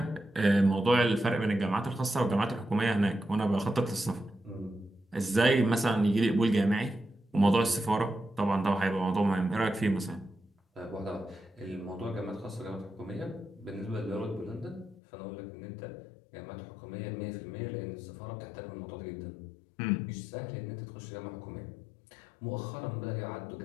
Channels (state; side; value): drops out; right; at 15.0 s